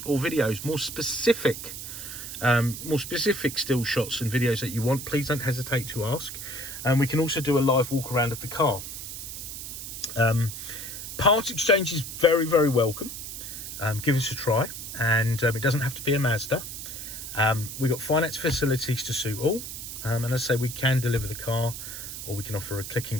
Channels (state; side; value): noise; right; hiss, 8 dB below the sound